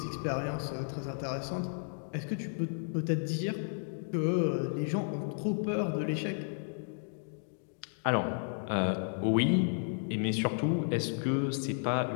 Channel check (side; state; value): right; silent; digital silence